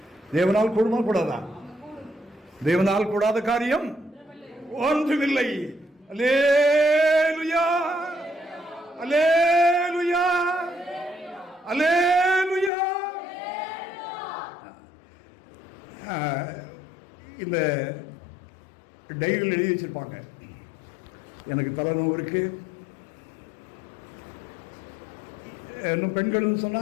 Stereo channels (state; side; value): drops out; right; at 12.7 s